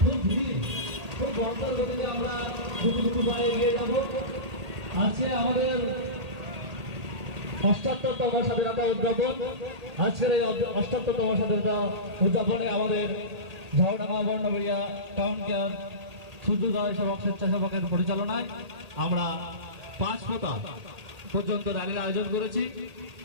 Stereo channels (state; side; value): late; left; 1.8 ms